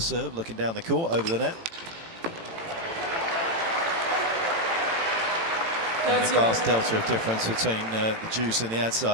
looking down the court over the net. And a vast delta of difference between the juice and the ad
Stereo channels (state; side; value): late; left; 18 ms